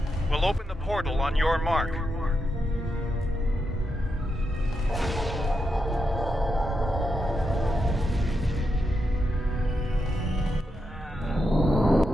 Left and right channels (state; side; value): normal; both; correlation 0.85